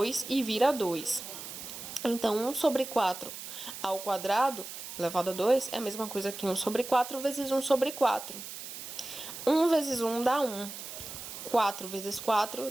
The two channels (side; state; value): right; noise; hiss, 10 dB below the sound